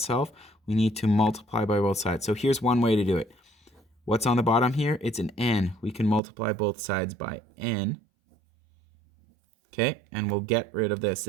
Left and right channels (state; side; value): drops out; left; at 6.2 s